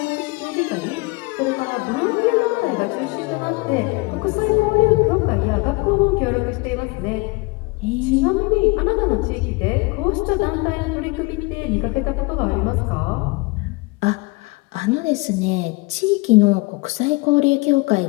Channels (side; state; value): right; quieter; 26.3 dB